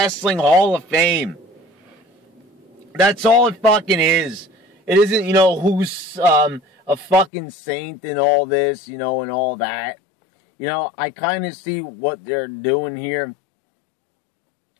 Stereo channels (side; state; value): right; drops out; at 7.3 s